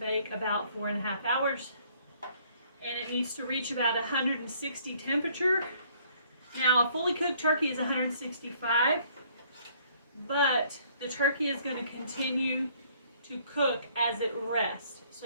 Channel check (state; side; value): inverted; both; correlation -0.61